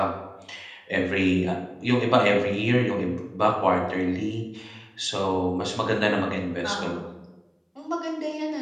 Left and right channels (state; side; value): identical; both; correlation 1.00